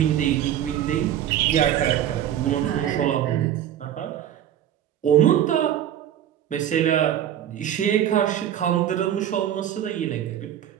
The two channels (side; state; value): left; quieter; 10.8 dB